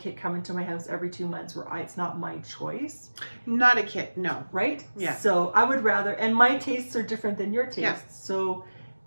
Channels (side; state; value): both; inverted; correlation -1.00